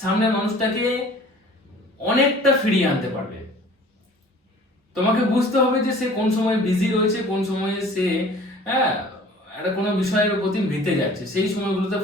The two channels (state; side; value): normal; both; correlation 0.48